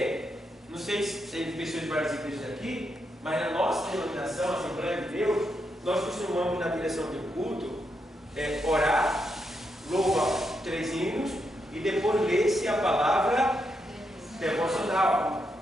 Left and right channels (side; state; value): both; normal; correlation 0.82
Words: Não sei se tem pessoas de várias igrejas aqui, mas na nossa denominação, Assembleia de Deus, nós costumamos, na direção do culto, orar, louvar 3 hinos e depois ler-se a palavra devocional.